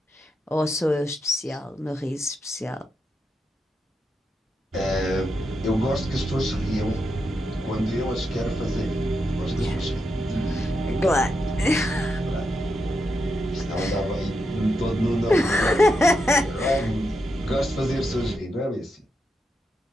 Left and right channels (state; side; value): normal; both; correlation 0.84